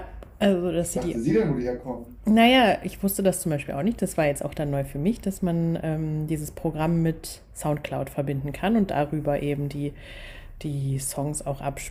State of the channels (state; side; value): identical; both; correlation 1.00